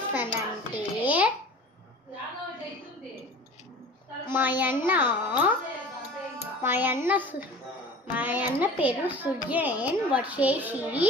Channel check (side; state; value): both; normal; correlation 0.41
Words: మా అన్న పేరు సుజన్. వచ్చేసి